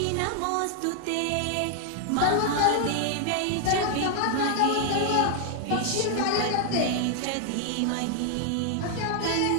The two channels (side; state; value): both; different; correlation 0.00